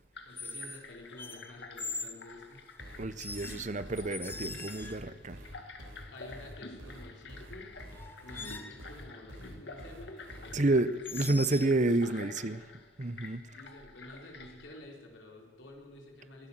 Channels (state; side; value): normal; both; correlation 0.56